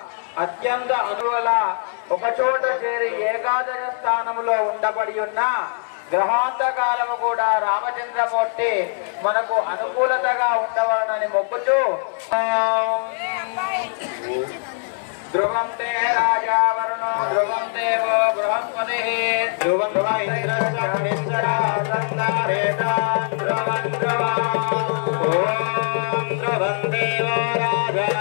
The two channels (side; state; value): right; silent; digital silence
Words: అత్యంత అనువల ఒకచోట చేరి ఏకాదశ స్థానంలో ఉండబడి ఉన్న గ్రహాంతకాలము కూడా రామచంద్రమూర్తి మనకు అనుకూలతగా ఉండవాలని మొక్కుతూ ధ్రువం తే రాజా వరుణో ధ్రువం దేవో బృహస్పతి ధ్రువం ధ్రువం దేవో రాజా